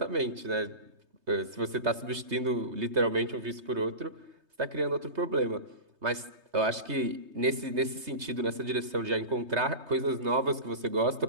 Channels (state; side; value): late; left; 3.2 ms